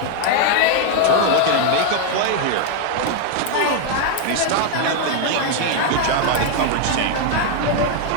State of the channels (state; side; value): different; both; correlation 0.01